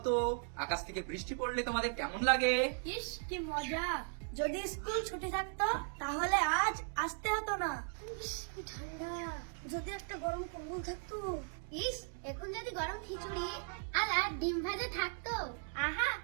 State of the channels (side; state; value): left; silent; 53 dB below the other